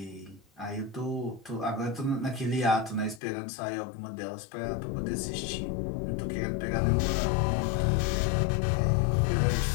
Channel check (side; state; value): right; drops out; at 3.2 s